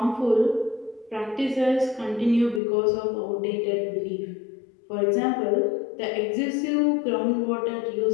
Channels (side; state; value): right; drops out; at 2.6 s